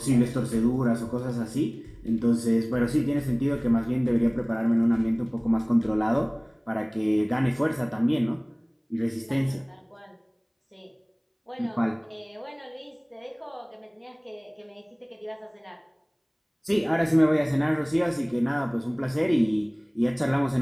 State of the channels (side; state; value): both; identical; correlation 1.00